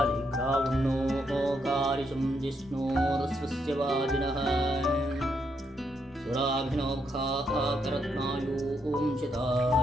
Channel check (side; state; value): both; normal; correlation 0.77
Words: कारिशं जिष्णोरस्वस्य वाजिनः सुराभिनोखाः करत्नायूं